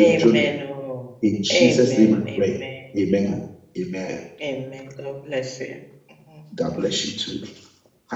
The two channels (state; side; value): identical; both; correlation 1.00